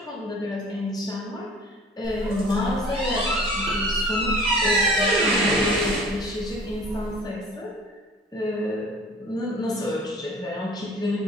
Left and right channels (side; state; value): both; normal; correlation 0.47